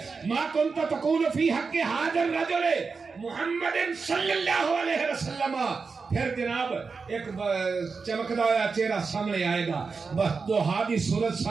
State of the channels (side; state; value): left; quieter; 4.8 dB